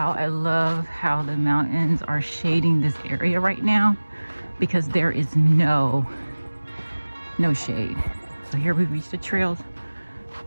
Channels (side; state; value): both; inverted; correlation -1.00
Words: I love how the mountains are shading this area right now because there is no shade. So here we reached the trail